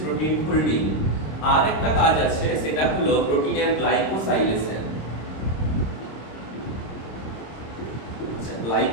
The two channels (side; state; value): right; late; 26 ms